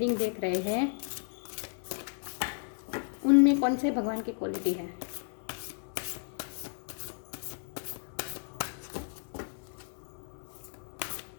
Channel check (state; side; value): silent; right; 55 dB below the other